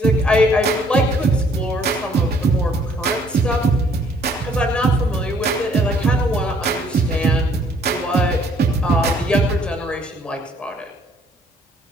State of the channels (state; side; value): normal; both; correlation 0.62